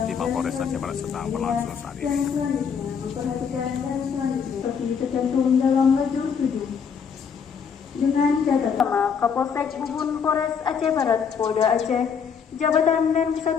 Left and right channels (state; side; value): quieter; right; 6.7 dB